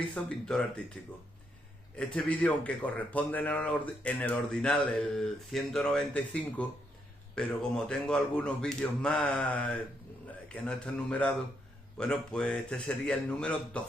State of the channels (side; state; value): both; normal; correlation 0.77